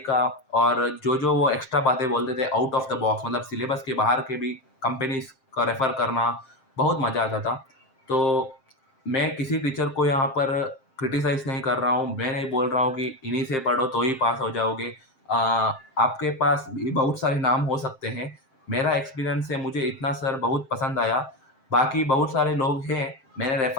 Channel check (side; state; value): right; late; 7.6 ms